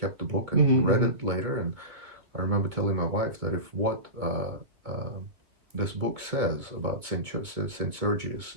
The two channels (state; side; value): late; left; 2.7 ms